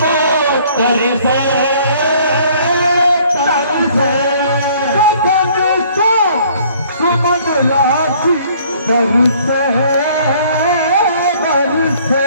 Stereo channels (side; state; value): both; inverted; correlation -0.58